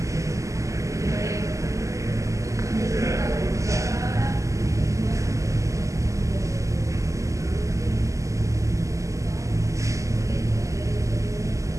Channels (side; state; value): left; late; 0.16 ms